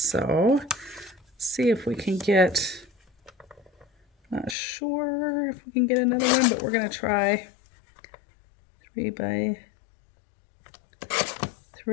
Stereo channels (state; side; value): drops out; right; at 4.5 s